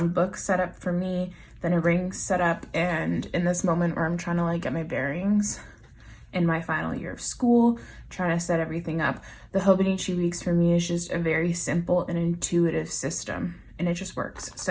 book setup for me than a ring setup. And in this moment where I'm trying to like get my bearings in my final year of school, trying to set everything up, the Hobonichi weeks for me is just a very simple and intuitive system, and it just works.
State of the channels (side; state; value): both; identical; correlation 1.00